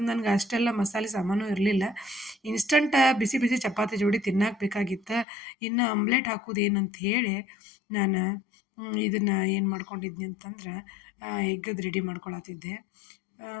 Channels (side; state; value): right; drops out; at 5.2 s